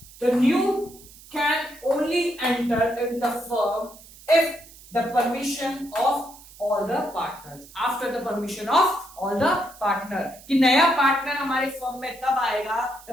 तो new can only enter in the firm if the permission of all the partners. After the permission of all the partner कि नया पार्टनर हमारे फर्म में तब आएगा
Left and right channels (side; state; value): right; noise; hiss, 21 dB below the sound